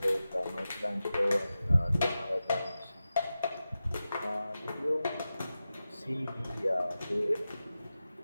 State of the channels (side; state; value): both; inverted; correlation -0.93